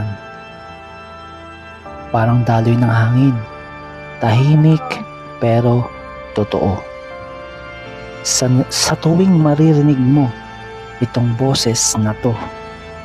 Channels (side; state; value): both; identical; correlation 1.00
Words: Parang daloy ng hangin. Tahimik pero totoo. Sa tuwing maririnig mo itong boses na to,